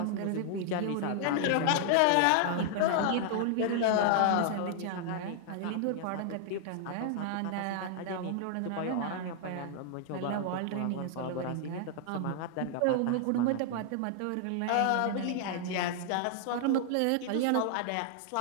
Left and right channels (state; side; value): different; both; correlation 0.00